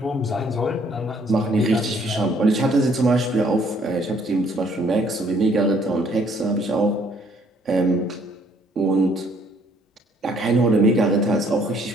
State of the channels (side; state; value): both; normal; correlation 0.63